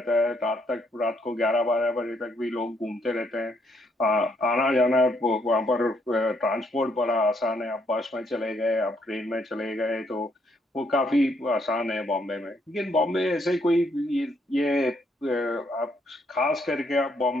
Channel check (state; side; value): normal; both; correlation 0.72